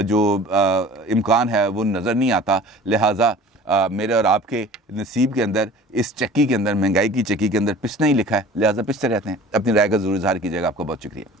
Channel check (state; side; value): normal; both; correlation 0.44